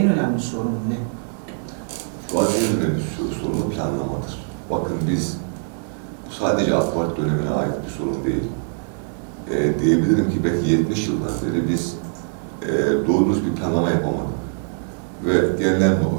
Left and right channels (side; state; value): left; silent; digital silence